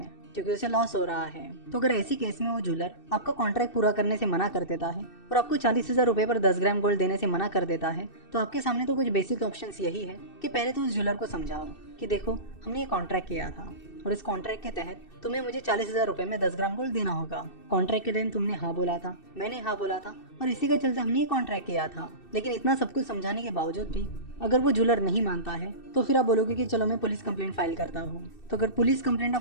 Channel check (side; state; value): right; late; 2.6 ms